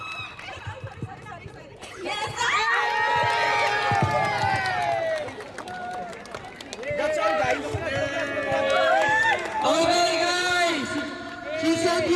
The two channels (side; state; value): both; identical; correlation 1.00